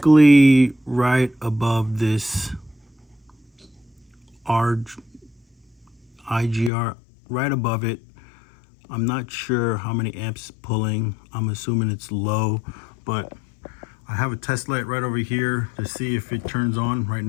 right above this IGR, right above it. I'm not sure how many amps it's pulling. I'm assuming it's low, but I have a test light right over here to see if it turns on. Right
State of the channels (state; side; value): drops out; right; at 6.7 s